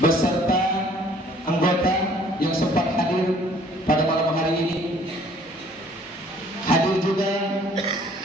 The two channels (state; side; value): normal; both; correlation 0.57